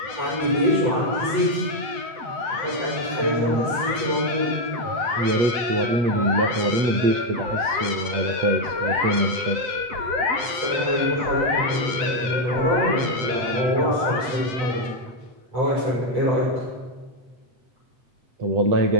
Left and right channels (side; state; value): left; late; 7.9 ms